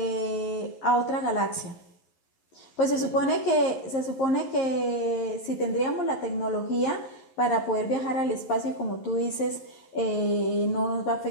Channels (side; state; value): right; late; 11 ms